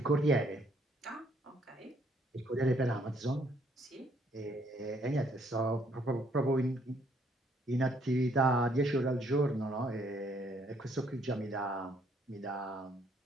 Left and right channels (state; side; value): normal; both; correlation 0.67